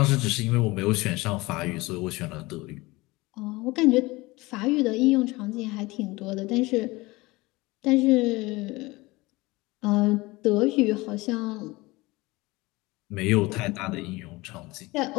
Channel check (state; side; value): quieter; right; 21.9 dB